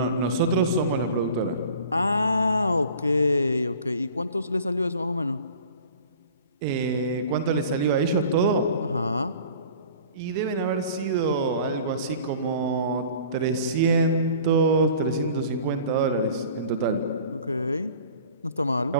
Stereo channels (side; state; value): both; inverted; correlation -0.45